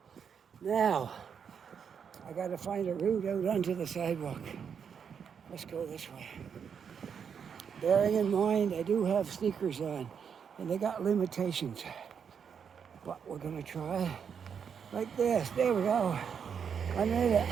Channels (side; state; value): left; quieter; 7.1 dB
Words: Now, I got to find a route out onto the sidewalk. Let's go this way. Bearing in mind, I do have sneakers on, and they got limitations. But we're going to try like this. There we go. I made it.